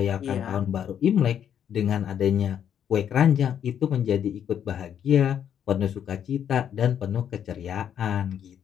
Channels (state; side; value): quieter; right; 9.1 dB